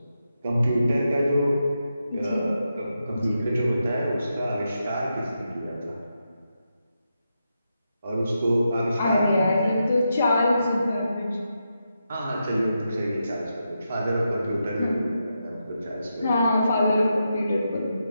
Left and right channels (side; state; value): both; inverted; correlation -0.86